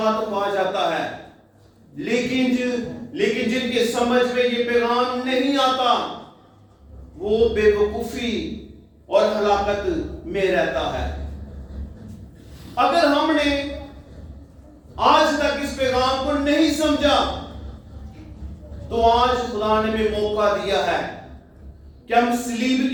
पा जाता है। लेकिन जिनके समझ में ये पैगाम नहीं आता, वो बेवकूफी और हलाकत में रहता है। अगर हमने आज तक इस पैगाम को नहीं समझा, तो आज खुदा ने भी मौका दिया है कि हम सलीब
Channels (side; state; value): both; identical; correlation 1.00